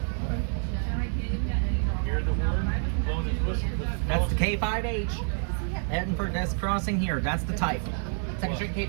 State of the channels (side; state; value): left; silent; 57 dB below the other